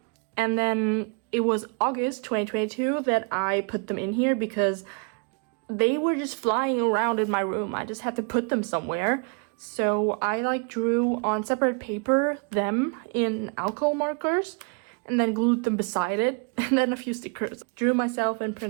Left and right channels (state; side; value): quieter; left; 36.9 dB